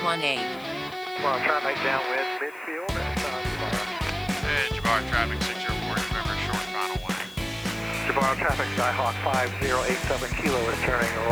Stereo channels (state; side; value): noise; left; hiss, 23 dB below the sound